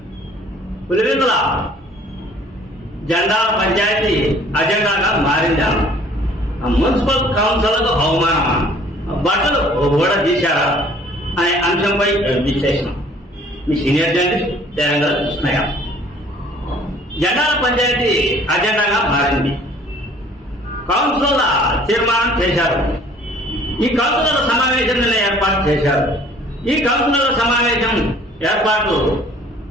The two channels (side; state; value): both; normal; correlation 0.54